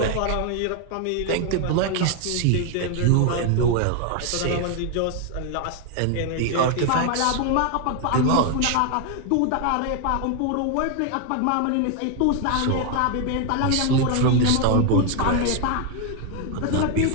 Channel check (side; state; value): both; different; correlation 0.01